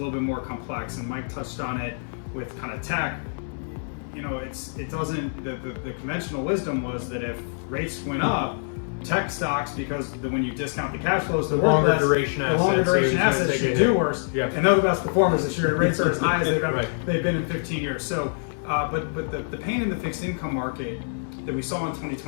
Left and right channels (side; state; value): right; silent; 61 dB below the other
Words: bit more complex, and Mike touched on it with kind of tech. It doesn't. The conventional wisdom was that if rates went up, tech stocks, because when you discount the cash flows, the longer less, duration the longer assets, duration so it's gonna assets take a should do hit. worse. Yeah. And they're the best performers this year. Rates are as high as Right. they've been in 15 years. So, but the pain in the fixed income market that we saw in